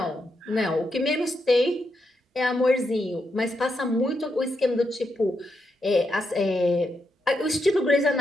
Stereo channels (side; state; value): both; normal; correlation 0.83